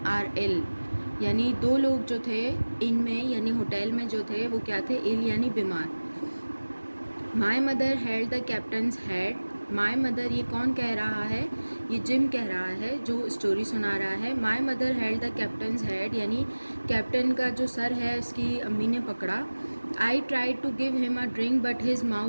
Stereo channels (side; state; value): both; inverted; correlation -1.00